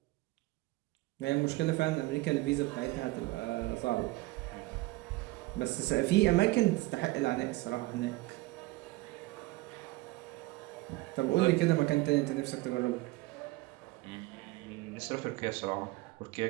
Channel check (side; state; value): left; quieter; 20.4 dB